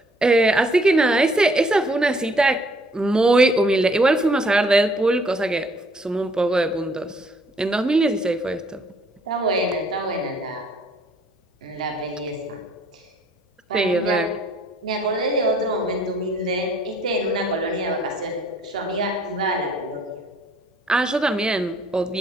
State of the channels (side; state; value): both; normal; correlation 0.62